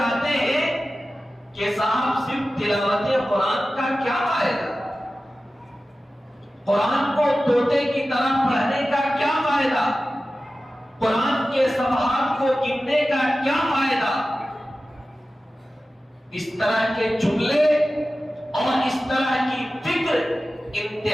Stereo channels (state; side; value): normal; both; correlation 0.95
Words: ہیں کہ صاحب صرف تلاوت قرآن کا کیا فائدہ، قرآن کو طوطے کی طرح پڑھنے کا کیا فائدہ، قرآن کے صفحات کو گننے کا کیا فائدہ. اس طرح کے جملے اور اس طرح کی فکر